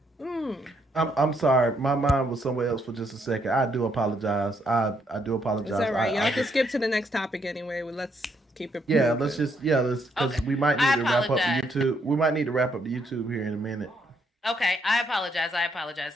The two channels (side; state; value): both; normal; correlation 0.74